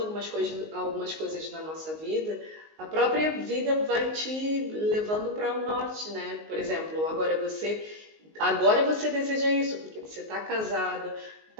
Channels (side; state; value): left; late; 19 ms